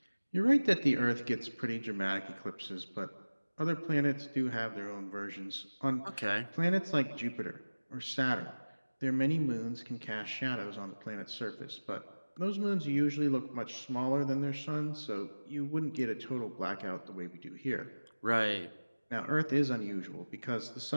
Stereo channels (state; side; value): inverted; both; correlation -1.00